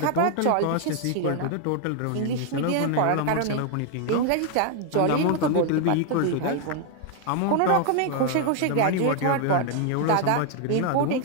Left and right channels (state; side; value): different; both; correlation 0.00